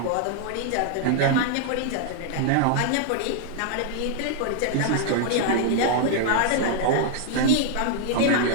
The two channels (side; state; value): both; different; correlation -0.01